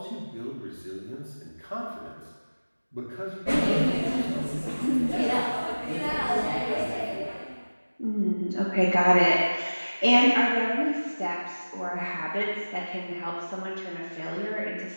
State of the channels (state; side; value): inverted; both; correlation -1.00